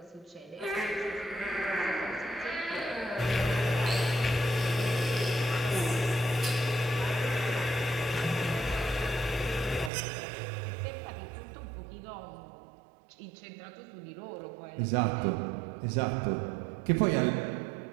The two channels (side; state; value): left; drops out; at 9.9 s